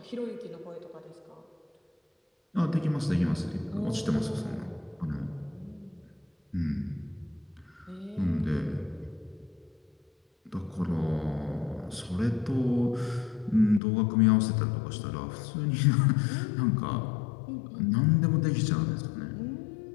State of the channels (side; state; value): right; drops out; at 13.8 s